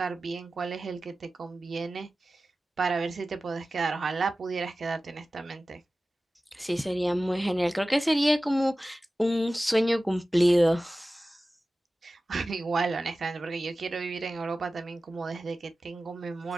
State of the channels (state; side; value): normal; both; correlation 0.96